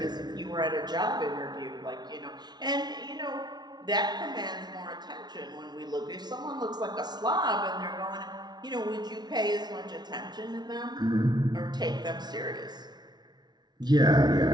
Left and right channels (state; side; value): late; left; 0.20 ms